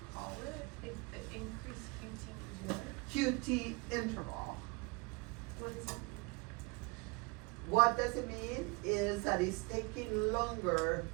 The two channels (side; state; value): left; quieter; 28.8 dB